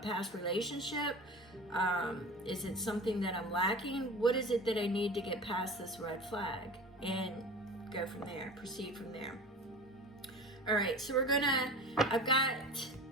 relationship? Is it something that I'm lacking? What is it that I need to get past this red flag? And go from there, proceed from there. All right, so I've got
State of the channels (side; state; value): both; normal; correlation 0.35